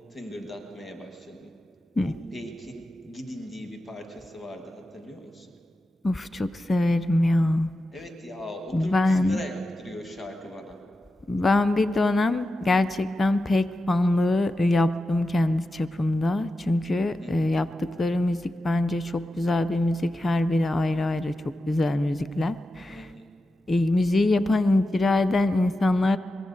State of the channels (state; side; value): normal; both; correlation 0.91